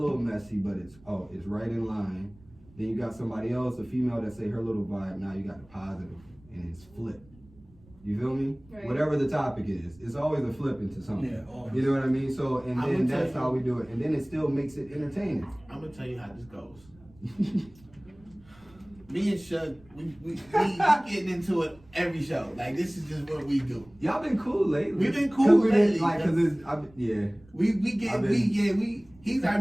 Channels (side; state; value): right; noise; rumble, 26 dB below the sound